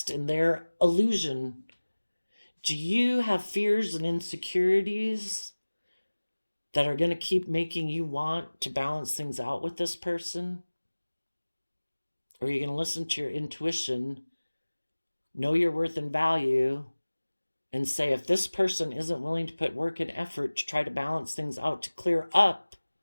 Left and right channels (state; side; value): inverted; both; correlation -1.00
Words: in their illusion. Do you have fears and insecurities that are going to keep making you want to balance things out with this person? Or are you going to listen to your intuition, know your worth and value, and say, if this person isn't willing to put work and effort to try to balance things out, to clear up